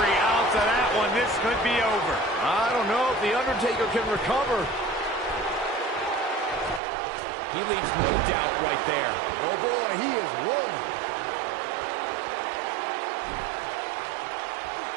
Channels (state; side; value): drops out; left; at 6.8 s